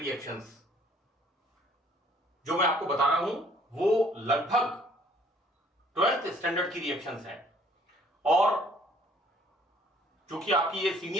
जो मैं आपको बता रहा हूं वो लगभग 12th स्टैंडर्ड की रिएक्शंस हैं। और चूंकि आपकी ये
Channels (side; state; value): both; normal; correlation 0.59